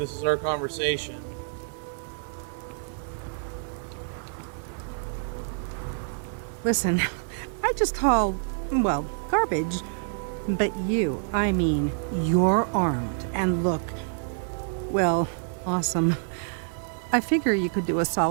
is our conversation. Listen, I just haul, well, garbage. But you, I mean, you're armed and look, well, awesome. I figure you could do a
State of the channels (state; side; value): silent; left; digital silence